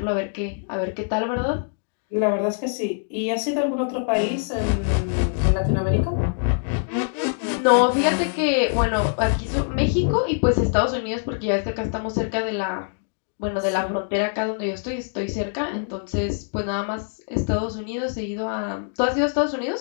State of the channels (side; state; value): right; silent; digital silence